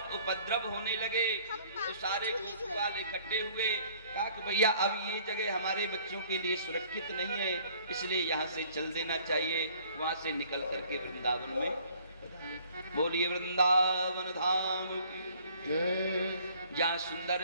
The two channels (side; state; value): both; inverted; correlation -0.58